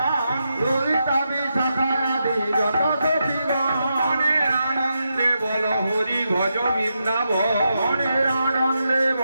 ললিতা বিশাখায়াদি যত সখীগণ আনন্দে বল হরি ভজ বৃন্দাবন আনন্দে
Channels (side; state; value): both; inverted; correlation -0.85